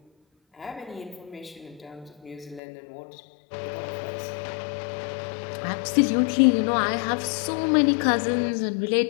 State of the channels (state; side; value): drops out; right; at 2.6 s